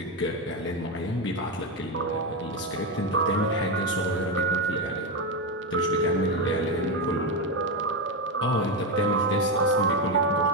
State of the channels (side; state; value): both; normal; correlation 0.10